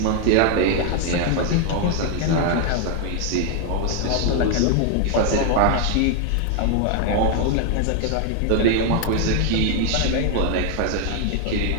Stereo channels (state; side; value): different; both; correlation 0.00